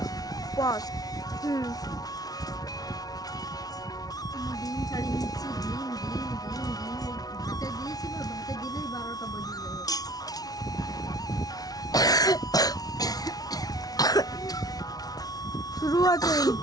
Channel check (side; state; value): right; late; 0.18 ms